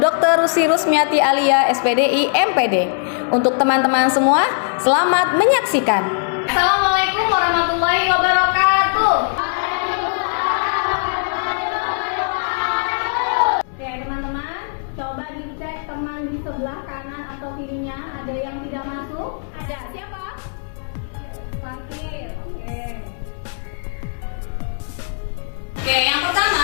Rusi Rusmiati Alia SPDI MPD. Untuk teman-teman semua, selamat menyaksikan. Assalamualaikum warahmatullahi wabarakatuh. Oke teman-teman, coba dicek teman di sebelah kanan atau kirinya, ada yang tidak masuk? Ada, siapa? Fatir. Oke, yang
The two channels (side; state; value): right; silent; 61 dB below the other